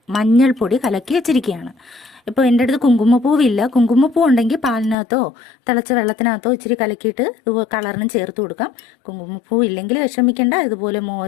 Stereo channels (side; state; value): right; drops out; at 5.0 s